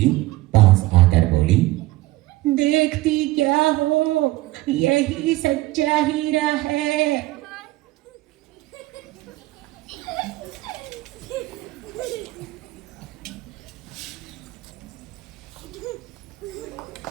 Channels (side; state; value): left; quieter; 18.3 dB